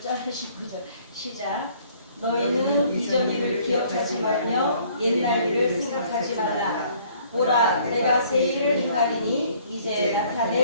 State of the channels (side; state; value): both; inverted; correlation -0.59